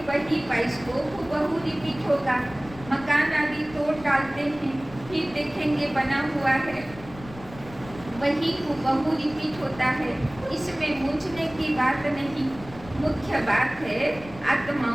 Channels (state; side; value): noise; left; rumble, 17 dB below the sound